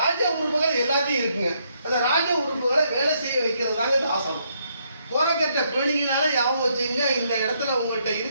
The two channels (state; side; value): inverted; both; correlation -0.74